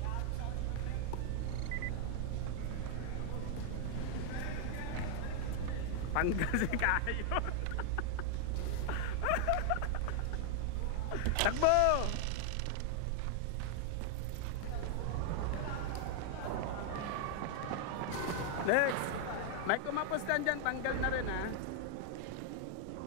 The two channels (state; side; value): different; both; correlation 0.00